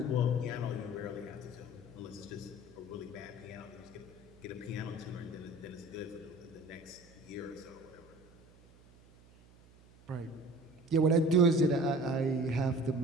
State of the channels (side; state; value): right; noise; hum, 25 dB below the sound